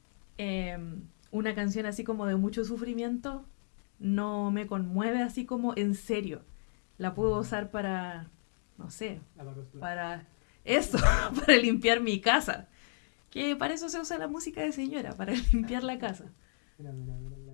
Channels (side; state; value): right; silent; digital silence